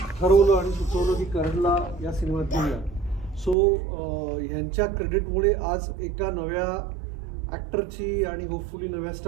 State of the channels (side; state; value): left; drops out; at 3.6 s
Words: ठरवलं आणि सुचवलं की करणला या सिनेमात घेऊया. सो ह्यांच्या क्रेडिटमुळे आज एका नव्या ॲक्टरची आणि होपफुली नव्या